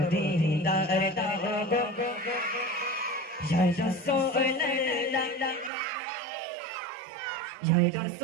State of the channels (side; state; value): left; drops out; at 5.7 s